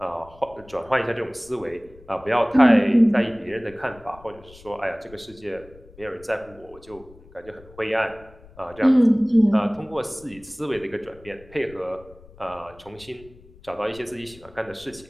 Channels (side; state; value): left; noise; rumble, 23 dB below the sound